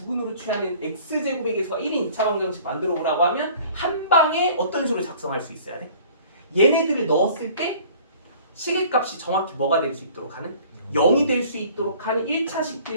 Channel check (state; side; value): inverted; both; correlation -0.50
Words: 취하는 x제곱의 계수가 1인 2차 방정식 만들어 보라고 하면 한 방에 어떤 식으로 작성할 수 있어야 돼? 얘네들을 넣었을 때 식의 값이 정확히 뭐가 될 수 있도록 하는? 0이 될 수 있도록 하는